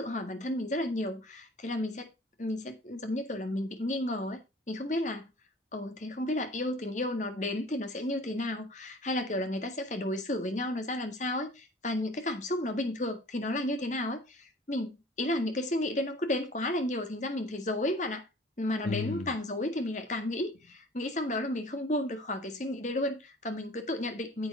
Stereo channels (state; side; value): normal; both; correlation 0.47